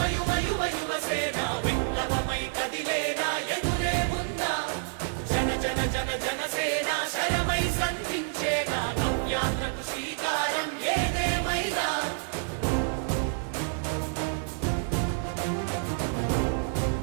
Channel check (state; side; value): silent; left; 59 dB below the other